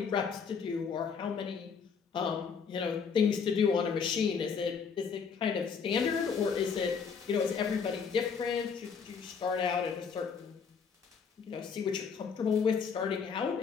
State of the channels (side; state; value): right; quieter; 6.1 dB